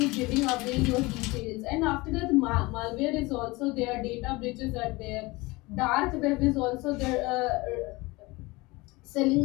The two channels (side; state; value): right; quieter; 22.9 dB